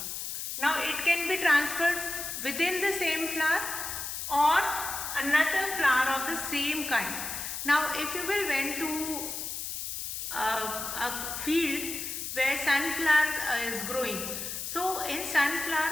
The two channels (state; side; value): noise; left; hiss, 5 dB below the sound